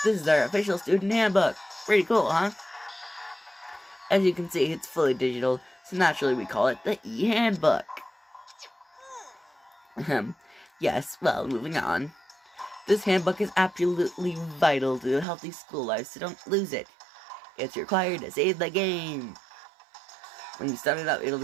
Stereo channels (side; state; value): left; drops out; at 15.2 s